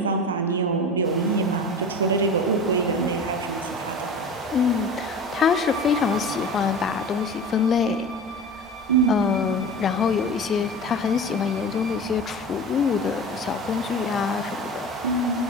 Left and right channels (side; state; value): both; normal; correlation 0.33